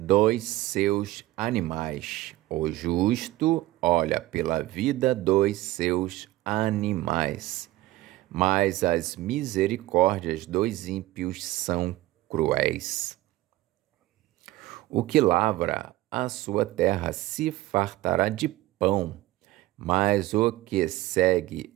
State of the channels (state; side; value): quieter; left; 17.2 dB